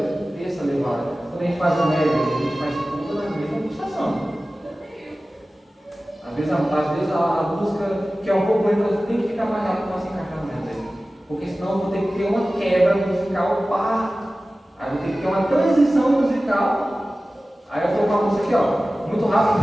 essa levada. Quando a gente faz o médio, a gente faz tudo na mesma pulsação. Às vezes a música, que é um pouco lenta, tem que ficar mais rápido para se encaixar no médio. Porque senão eu vou ter que ter uma quebra musical, aí eu vou ter que ter uma transição musical. Aí eu estou com a música aqui, ó, muito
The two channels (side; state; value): both; normal; correlation 0.96